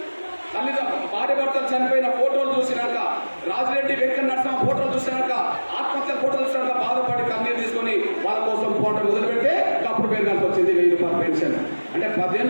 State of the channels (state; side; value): inverted; both; correlation -1.00